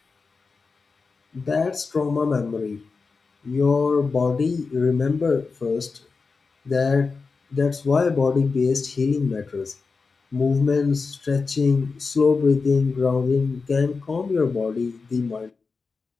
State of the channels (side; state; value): right; quieter; 4.5 dB